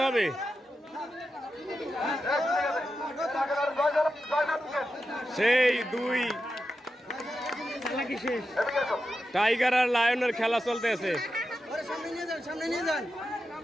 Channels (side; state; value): both; normal; correlation 0.90